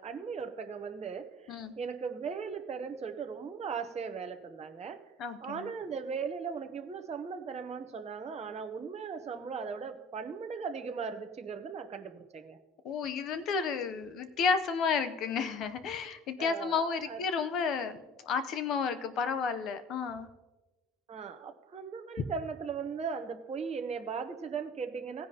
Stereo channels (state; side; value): normal; both; correlation 0.45